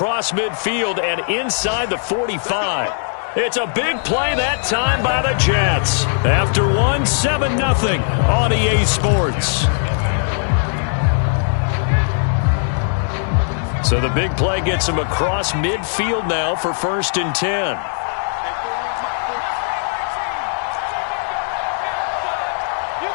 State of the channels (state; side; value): silent; right; digital silence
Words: midfield and inside the 45. It's a big play that time by the Jets. After one, 7-0 on EA Sports. So the big play gets him across midfield now for 1st and 10.